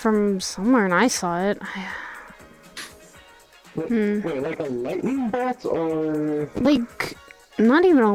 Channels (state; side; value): identical; both; correlation 1.00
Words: somewhere and I saw it. Wait, like a lightning bolt or... Like, not even